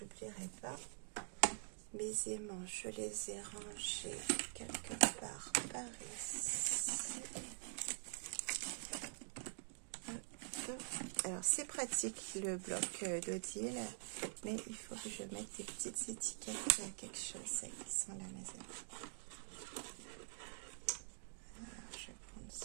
pas. Mes aimants, je les ai rangés quelque part par ici. Alors, c'est pratique le bloc d'Odile, mais il faut que je mette des petites étiquettes à quelque chose. Ça, qui sont là, mes amis. Alors, je vais prendre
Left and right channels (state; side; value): silent; left; digital silence